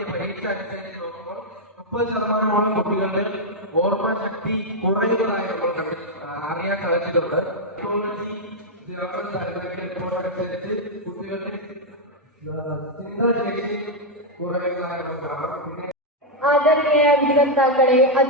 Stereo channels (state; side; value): normal; both; correlation -0.02